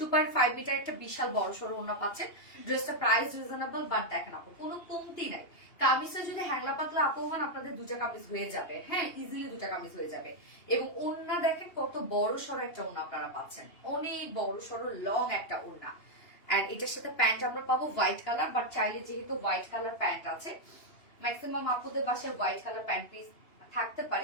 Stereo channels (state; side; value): late; right; 2.8 ms